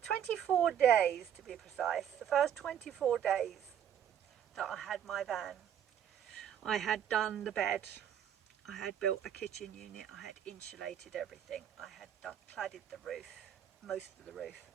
days to be precise, the first 24 days that I had my van, I had done the bed, I had built a kitchen unit, I had insulated everything, I had cladded the roof, most of the roof,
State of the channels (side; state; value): left; quieter; 9.4 dB